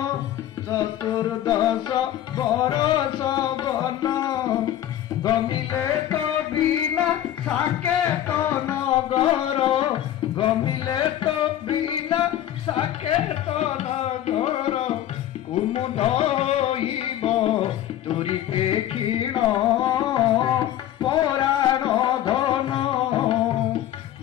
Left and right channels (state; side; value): quieter; right; 12.2 dB